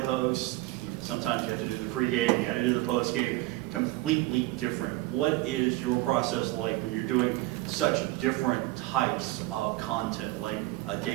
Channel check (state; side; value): quieter; left; 19.1 dB